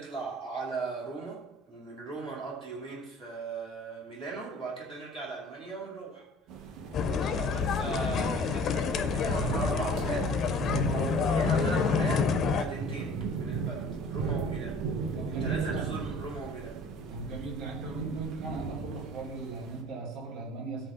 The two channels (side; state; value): both; normal; correlation 0.47